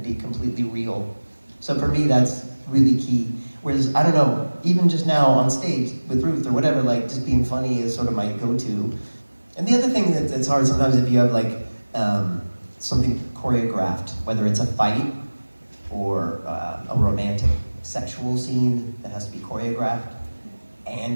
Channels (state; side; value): inverted; both; correlation -1.00